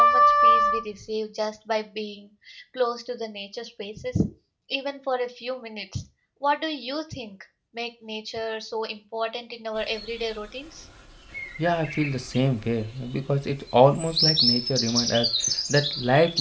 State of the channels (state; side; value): identical; both; correlation 1.00